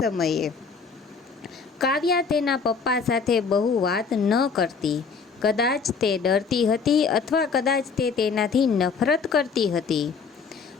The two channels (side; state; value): right; quieter; 5.4 dB